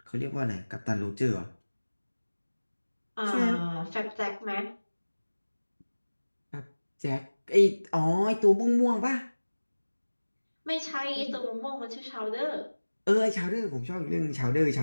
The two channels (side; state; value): both; inverted; correlation -1.00